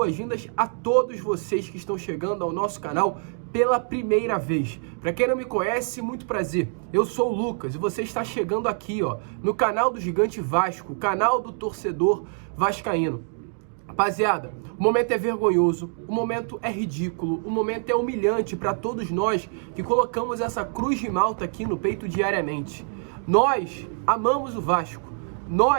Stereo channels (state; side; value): silent; left; 62 dB below the other